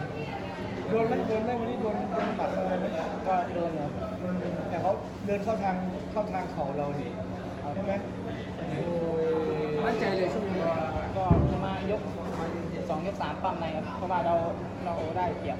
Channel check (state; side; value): identical; both; correlation 1.00